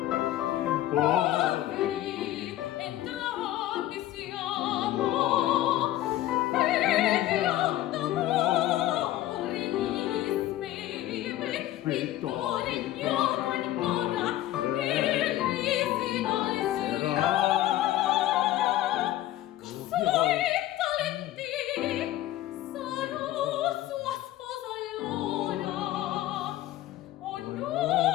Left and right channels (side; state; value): right; quieter; 14.2 dB